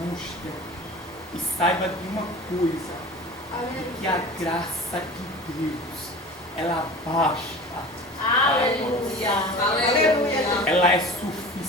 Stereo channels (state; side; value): normal; both; correlation 0.37